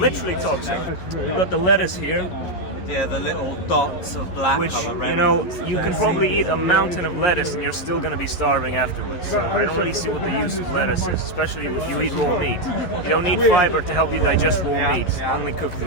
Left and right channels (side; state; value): right; late; 11 ms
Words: toxic. We've got the lettuce here. Yeah, the little dots of black Which, color. you know, you can probably eat a mountain of lettuce and you're still going to be starving afterwards. So I don't really see what the use of lettuce is, especially if you eat raw meat. You don't need fiber to help you digest raw meat, only cooked